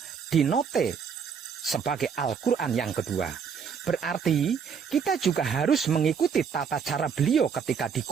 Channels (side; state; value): left; quieter; 6.7 dB